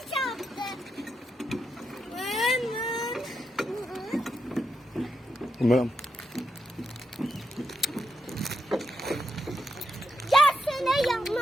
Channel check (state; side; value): normal; both; correlation 0.83